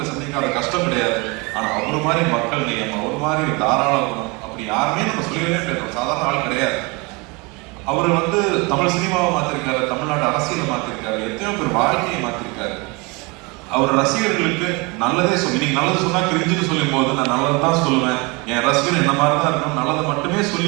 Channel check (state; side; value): quieter; left; 27.7 dB